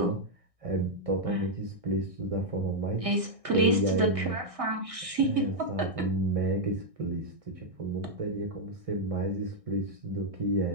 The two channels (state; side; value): late; left; 1.6 ms